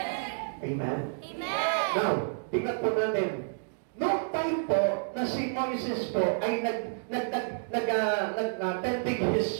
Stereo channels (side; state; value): left; silent; digital silence